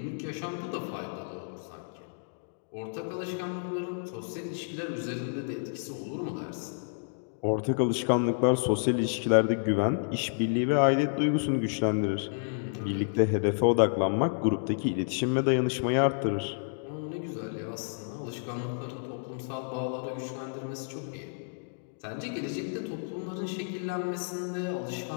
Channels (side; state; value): right; silent; digital silence